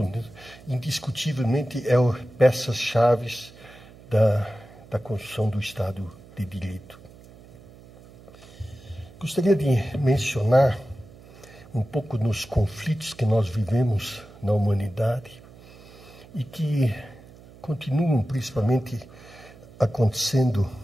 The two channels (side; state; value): right; noise; hum, 21 dB below the sound